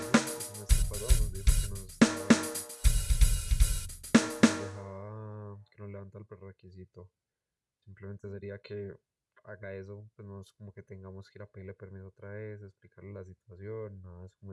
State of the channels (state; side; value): identical; both; correlation 1.00